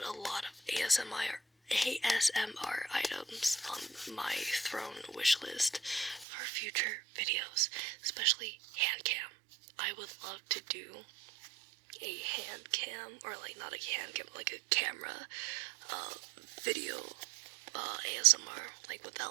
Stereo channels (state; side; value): drops out; left; at 6.2 s